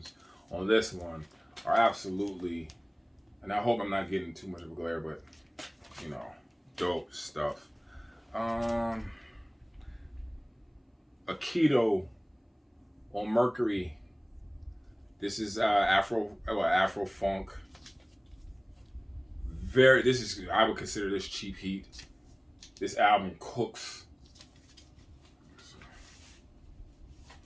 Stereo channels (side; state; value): both; identical; correlation 1.00